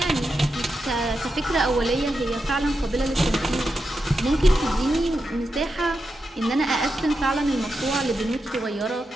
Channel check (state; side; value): normal; both; correlation 0.87